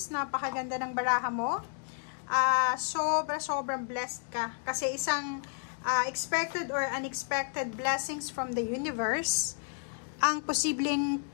Napakaganda ng baraha mo. Sobrang blessed ka. Kasi isang expected or unexpected blessings from the universe ang posibleng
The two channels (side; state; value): right; silent; 57 dB below the other